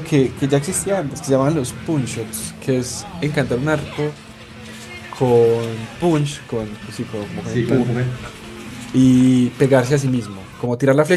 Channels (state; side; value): identical; both; correlation 1.00